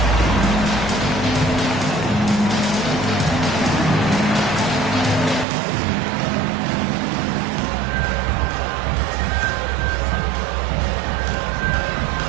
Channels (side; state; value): left; drops out; at 5.5 s